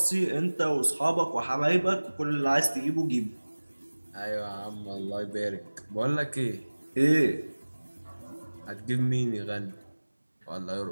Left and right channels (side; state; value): both; inverted; correlation -1.00